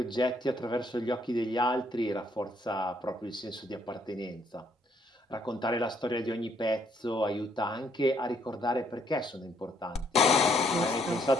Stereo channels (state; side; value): normal; both; correlation 0.69